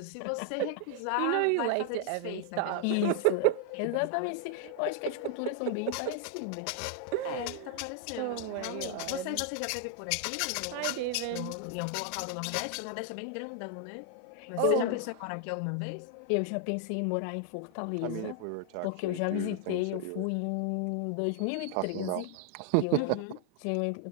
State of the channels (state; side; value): different; both; correlation 0.00